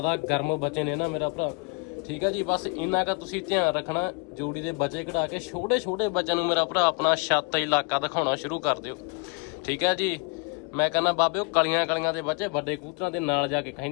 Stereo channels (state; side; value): quieter; right; 31.3 dB